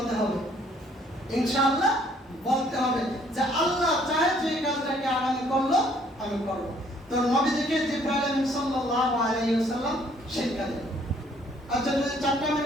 হবে? ইনশাআল্লাহ বলতে হবে, যে আল্লাহ চায় যে কাজটাকে আগামী করলো আমি করব। তো নবীজিকে জিবরাইল সাল্লাল্লাহু আলাইহি ওয়াসাল্লাম শিক্ষা দেন। আচ্ছা, যদি 4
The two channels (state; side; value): normal; both; correlation 0.62